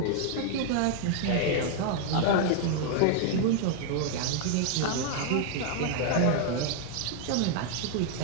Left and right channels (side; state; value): both; different; correlation 0.00